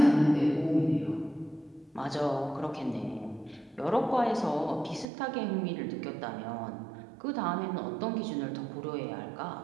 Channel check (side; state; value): left; drops out; at 5.1 s